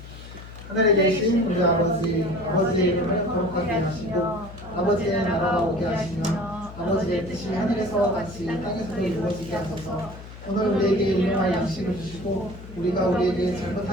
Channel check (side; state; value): left; noise; hum, 15 dB below the sound